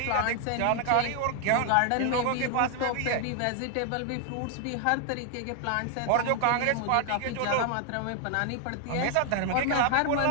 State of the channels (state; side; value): different; both; correlation 0.00